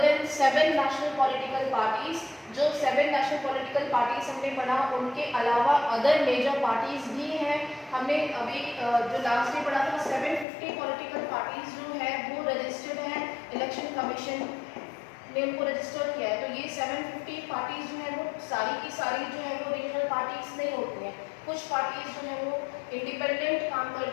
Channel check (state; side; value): drops out; right; at 10.5 s